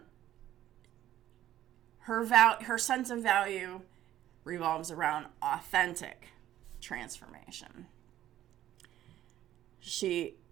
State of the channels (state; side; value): quieter; left; 12.7 dB